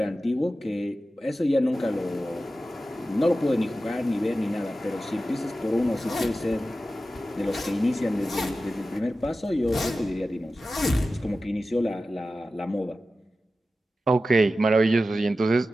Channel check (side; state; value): both; normal; correlation 0.94